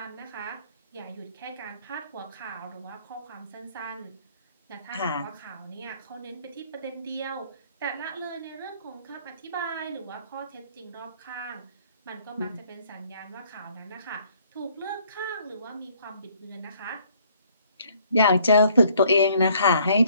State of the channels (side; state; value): both; inverted; correlation -0.63